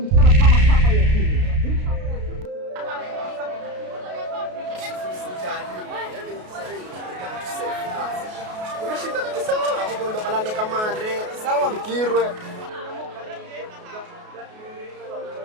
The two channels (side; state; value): left; late; 33 ms